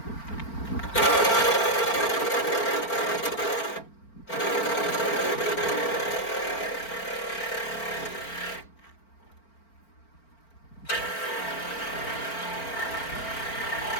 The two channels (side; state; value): right; late; 4.4 ms